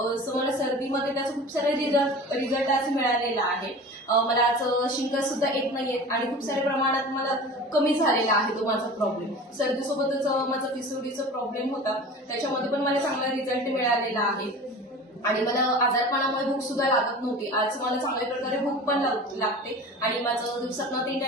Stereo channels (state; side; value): normal; both; correlation 0.37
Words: मला सर्दीमध्ये त्याचा खूप सारे रिझल्ट आज मिळालेला आहे. मला आज शिंका सुद्धा येत नाहीये आणि खूप साऱ्या प्रमाणात मला कमी झालेला आहे तो माझा प्रॉब्लेम. सर्दीसोबतच माझा पिसोडीचा प्रॉब्लेम होता, त्याच्यामध्ये पण मला चांगला रिझल्ट मिळालेला आहे आणि मला आजारपणामुळे भूक सुद्धा लागत नव्हती. आज मला चांगल्या प्रकारे भूक पण लागते आणि माझं दिवसातनं 3